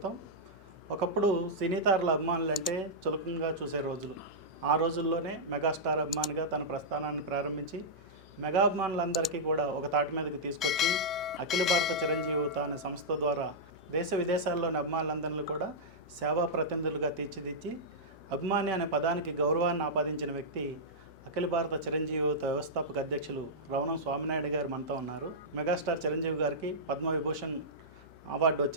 ఒకప్పుడు సినీ తారల అభిమానులు అంటే చులకంగా చూసే రోజులు. ఆ రోజుల్లోనే మెగాస్టార్ అభిమానిగా తన ప్రస్థానాన్ని ప్రారంభించి మెగా అభిమానులందరికీ కూడా ఒక తాటి మీదకి తీసుకొచ్చి అఖిల భారత చిరంజీవి యువత అనే సంస్థ ద్వారా దేశ విదేశాల్లోని అభిమానులందరినీ కూడా సేవా ప్రతినిధులుగా తీర్చిదిద్ది అభిమాని అనే పదానికి గౌరవాన్ని ఆపాదించిన వ్యక్తి అఖిల భారత చిరంజీవి యువత వ్యవస్థాపక అధ్యక్షులు రవణం స్వామినాయుడు గారు మనతో ఉన్నారు. మెగాస్టార్ చిరంజీవి గారికి పద్మవిభూషణ్ అవార్డు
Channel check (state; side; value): noise; left; hum, 23 dB below the sound